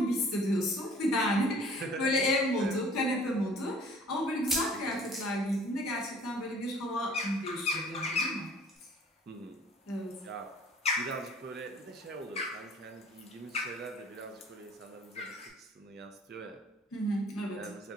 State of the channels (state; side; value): normal; both; correlation 0.52